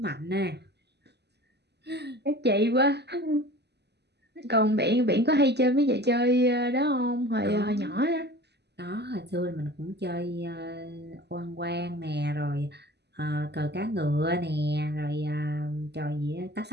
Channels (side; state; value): left; late; 0.49 ms